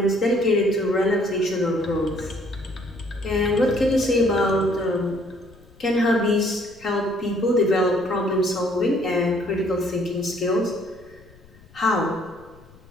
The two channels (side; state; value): left; noise; rumble, 25 dB below the sound